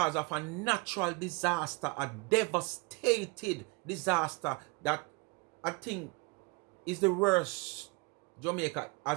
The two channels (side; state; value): left; quieter; 29.1 dB